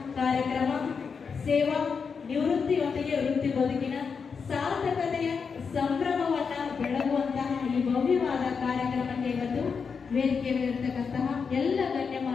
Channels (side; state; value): right; quieter; 5.7 dB